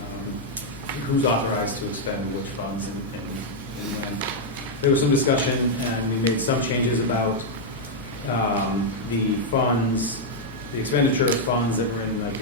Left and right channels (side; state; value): left; noise; hum, 18 dB below the sound